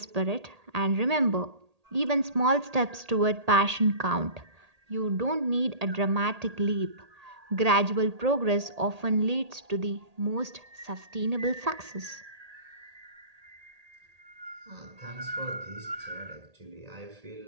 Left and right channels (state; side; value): late; left; 1.8 ms